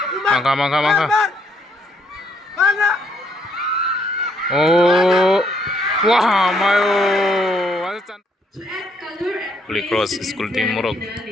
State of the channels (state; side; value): normal; both; correlation 0.70